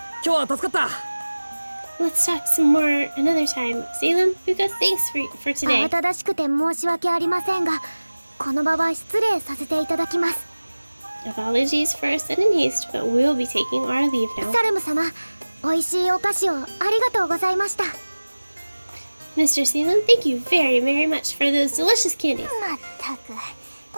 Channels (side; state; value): both; inverted; correlation -1.00